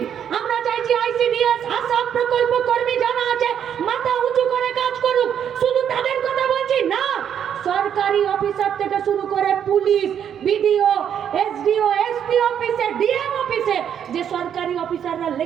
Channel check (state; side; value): quieter; left; 8.9 dB